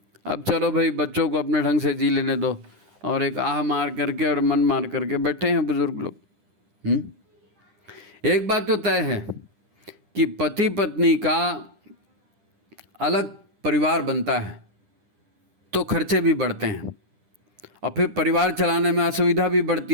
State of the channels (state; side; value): late; left; 10 ms